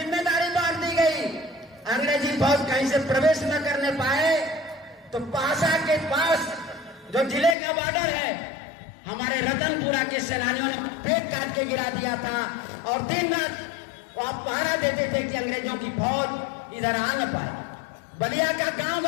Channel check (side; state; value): right; drops out; at 7.6 s